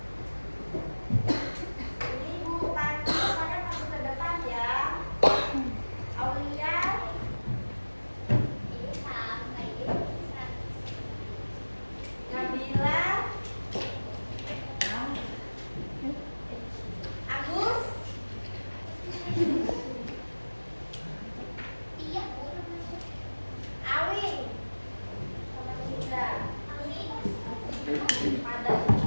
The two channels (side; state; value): both; inverted; correlation -1.00